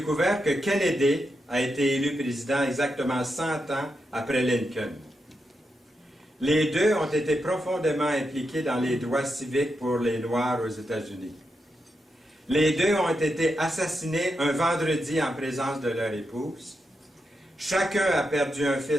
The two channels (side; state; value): both; normal; correlation 0.86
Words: que Kennedy a été élu président exactement 100 ans après Lincoln. Les deux ont été profondément impliqués dans les droits civiques pour les Noirs aux États-Unis. Les deux ont été assassinés un vendredi en présence de leur épouse. Chacun a perdu un